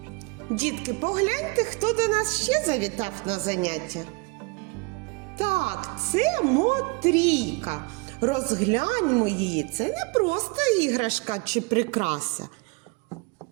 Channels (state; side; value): quieter; left; 28.4 dB